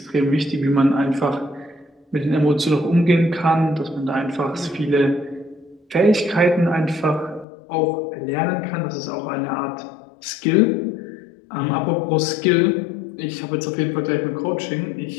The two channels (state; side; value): drops out; right; at 7.5 s